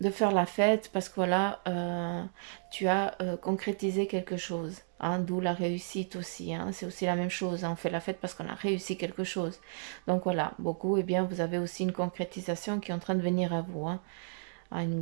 faire la fête parce que voilà, tu as concrétisé quelque chose. Hein, d'où la réussite aussi. Hein, c'est aussi la même chose. Hein, on fait la fête parce qu'on a réussi quelque chose. Donc voilà, beaucoup, eh bien, vous avez aussi une concrétisation qui est en train de venir à vous. Hein, à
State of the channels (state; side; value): silent; left; digital silence